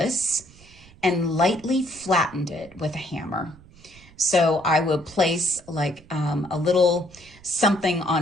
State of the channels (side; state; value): right; noise; rumble, 24 dB below the sound